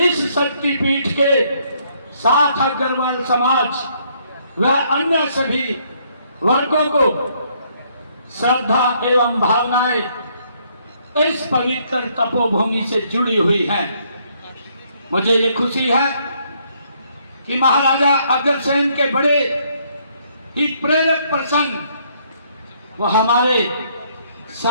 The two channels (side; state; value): both; inverted; correlation -0.68